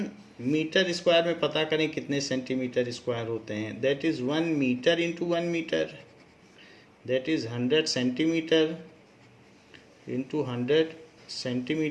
मीटर स्क्वायर में पता करें कितने सेंटीमीटर स्क्वायर होते हैं। That is 1 metre into 1 metre, that is 100 centimetre into 100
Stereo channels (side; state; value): both; identical; correlation 1.00